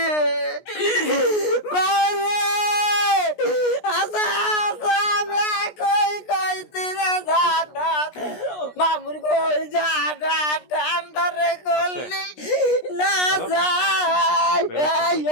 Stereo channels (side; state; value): right; late; 16 ms